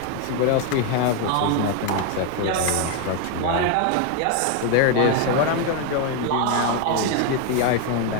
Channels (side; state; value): both; different; correlation 0.01